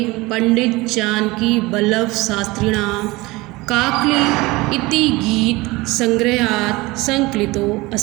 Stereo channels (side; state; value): left; quieter; 21.8 dB